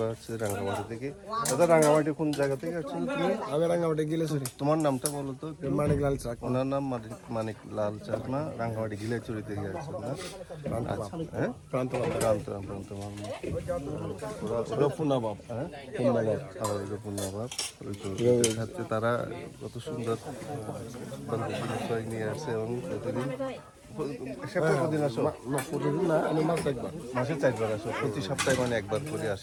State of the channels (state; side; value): identical; both; correlation 1.00